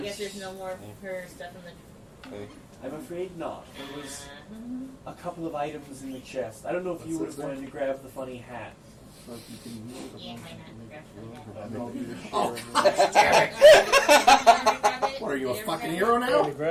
guess there's no more of her stuff in the. Okay. I'm afraid not. There was a couple of items in the chest. I don't know if you would have wanted to grab the funny hat. Like you can move it. Yeah, why not? Grab I some make the- of that. What are you, a Did you fucking ever hero grab I now? to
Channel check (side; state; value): both; identical; correlation 1.00